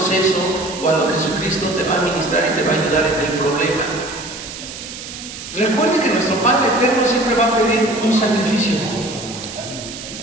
cuando Jesucristo te va a ministrar y te va a ayudar en el problema. Recuerde que nuestro Padre Eterno siempre va a pedir un sacrificio.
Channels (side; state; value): right; noise; hiss, 11 dB below the sound